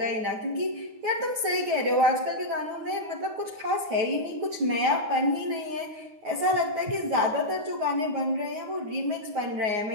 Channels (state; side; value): late; left; 9.5 ms